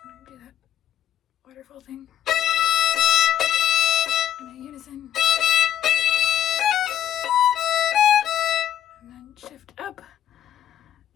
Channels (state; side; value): quieter; right; 10.9 dB